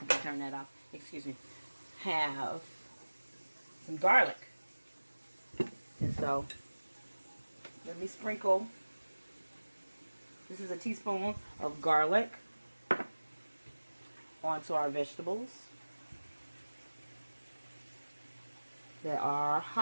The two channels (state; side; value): inverted; both; correlation -1.00